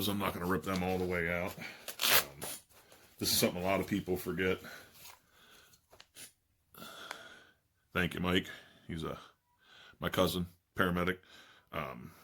I'm not going to rip them all the way out. This is something a lot of people forget. Thank you, Mike. He's my cousin, paramedic.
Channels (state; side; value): identical; both; correlation 1.00